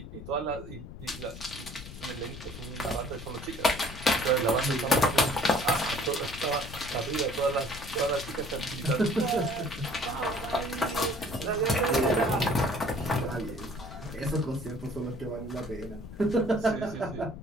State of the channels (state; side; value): noise; left; rumble, 12 dB below the sound